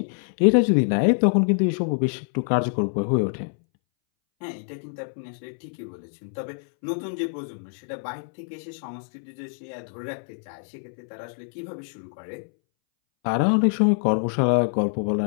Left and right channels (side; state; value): right; silent; 62 dB below the other